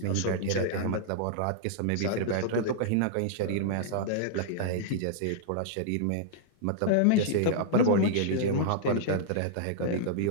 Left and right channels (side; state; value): both; different; correlation -0.02